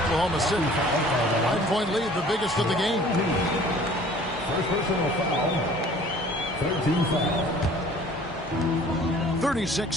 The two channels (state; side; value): noise; left; hum, 21 dB below the sound